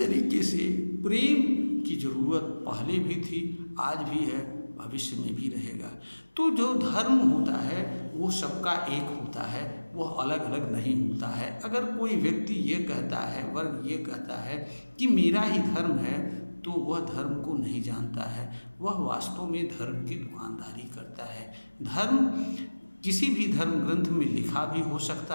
से प्रेम की ज़रूरत पहले भी थी, आज भी है, भविष्य में भी रहेगा। तो जो धर्म होता है वो सबका एक होता है, वह अलग अलग नहीं होता है। अगर कोई व्यक्ति ये कहता है, वर्ग ये कहता है कि मेरा ही धर्म है, तो वह धर्म को नहीं जानता है, वह वास्तव में धर्म की दुकानदारी करता है। धर्म किसी भी धर्म ग्रंथ में लिखा भी हो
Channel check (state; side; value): inverted; both; correlation -1.00